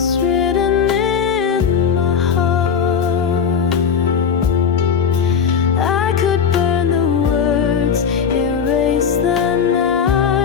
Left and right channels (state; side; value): quieter; right; 7.0 dB